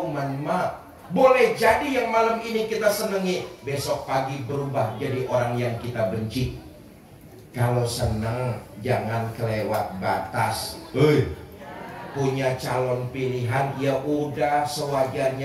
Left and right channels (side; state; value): both; identical; correlation 1.00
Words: ma. Boleh jadi yang malam ini kita senengi, besok pagi berubah jadi orang yang kita benci. Kalau seneng, jangan kelewat batas. Punya calon pilihan, ya udah